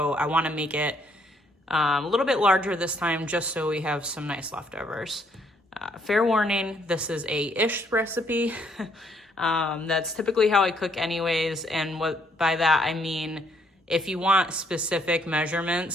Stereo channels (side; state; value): both; normal; correlation 0.69